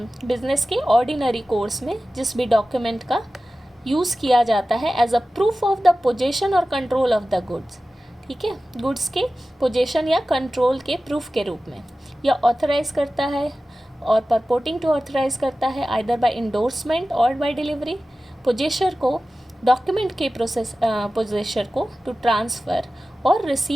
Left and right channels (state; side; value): normal; both; correlation 0.95